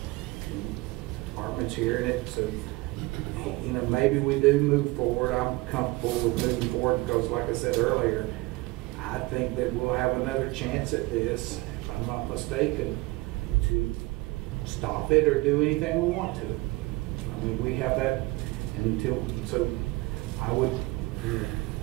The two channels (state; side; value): quieter; left; 22.1 dB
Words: departments hearing it. So, maybe we do move forward. I'm comfortable with moving forward because, like I said earlier, I think that we'll have another chance at this, if I'm not mistaken, to stop it or do anything we want to. I mean, we have that so I would